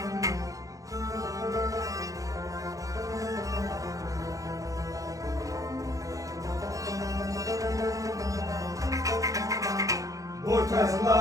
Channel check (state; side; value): late; left; 0.16 ms